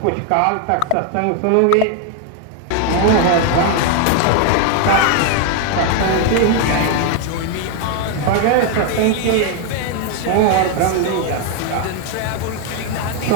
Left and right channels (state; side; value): different; both; correlation 0.00